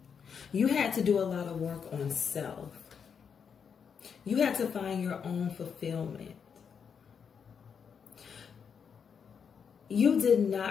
You had to do a lot of work on self. You had to find your own fulfillment. You did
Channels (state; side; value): quieter; right; 6.8 dB